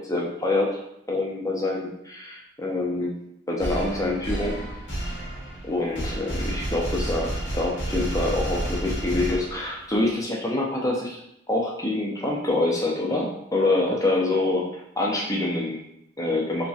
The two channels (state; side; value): normal; both; correlation 0.57